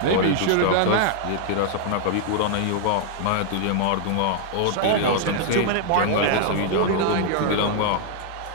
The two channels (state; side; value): different; both; correlation 0.00